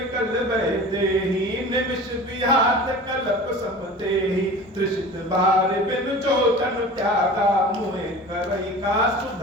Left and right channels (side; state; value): both; normal; correlation 0.38